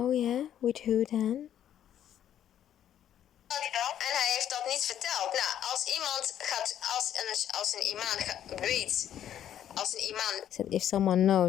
yeah, with who then? En hij heeft dat niet verteld. Nou, als iemand gaat, als een imam weet, als een imam... Said if someone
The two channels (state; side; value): quieter; right; 10.5 dB